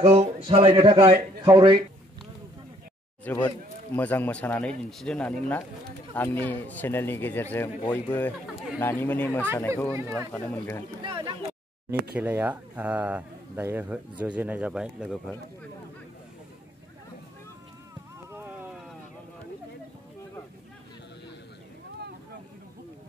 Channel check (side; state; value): both; normal; correlation 0.64